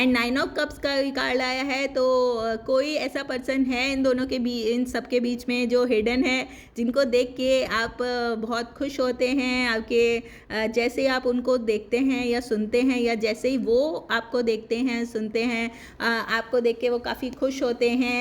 9 ऑफ कप्स का भी कार्ड आया है। तो कोई ऐसा पर्सन है इन दोनों के बीच, इन सब के बीच में जो हिडन है, जिनको देख के आप बहुत खुश होते हैं। आपके जैसे ही आप उनको देखते हैं या सुनते हैं, या जैसे ही वो आपको देखते हैं सुनते हैं, आपको देख के वो काफ़ी खुश होते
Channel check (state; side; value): identical; both; correlation 1.00